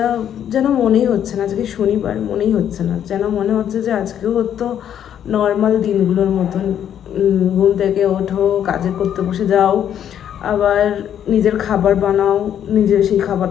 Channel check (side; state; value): right; quieter; 9.7 dB